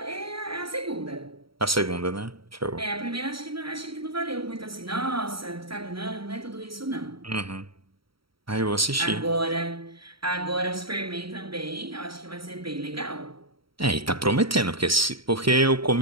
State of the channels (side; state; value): left; late; 0.75 ms